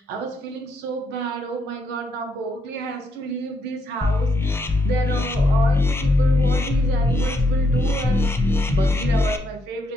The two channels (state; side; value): normal; both; correlation 0.76